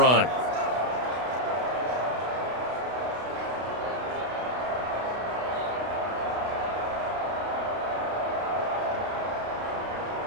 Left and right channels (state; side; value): late; left; 32 ms